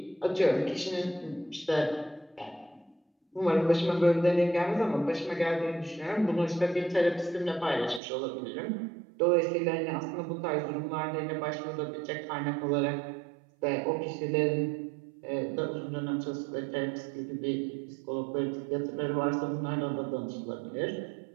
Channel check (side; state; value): left; drops out; at 8.0 s